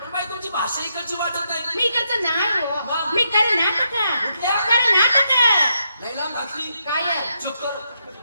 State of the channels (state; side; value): inverted; both; correlation -0.80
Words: पण बाई तुमची भाषा इकडची वाटत नाही. मी इकडचं नाही हो. मी कर्नाटक. लई लांब घातली. काय चुप कर.